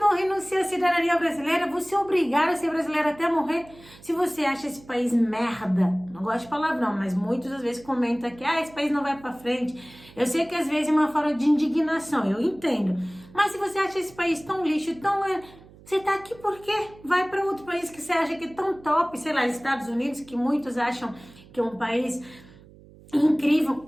renunciam à cidadania brasileira, você é obrigado a ser brasileiro até morrer. Se você acha esse país merda, não gosto de palavrão, mas muitas às vezes comentam que esse país não vai pra frente. Eu sei que às vezes é uma forma de indignação, eu entendo. Mas se você acha esse país tão lixo, você tá aqui por quê? Vai para outro país que você acha que é tão top, sei lá, Estados Unidos, que muitos acham que é um país incrível,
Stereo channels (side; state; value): right; noise; hum, 23 dB below the sound